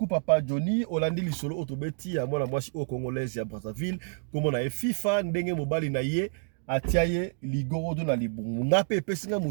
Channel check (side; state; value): left; silent; digital silence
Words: Papa Johnny. Olandi lisolo otobeti ya mwana mwasi o congolaise ya Brazzaville comme na FIFA ndenge mobali na ye atiaye ligorodo na libungu ngape pesinga